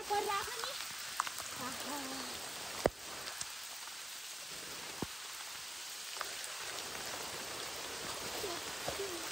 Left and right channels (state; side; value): normal; both; correlation 0.96